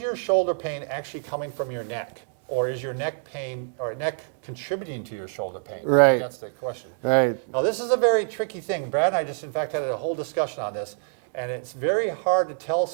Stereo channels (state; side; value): silent; left; digital silence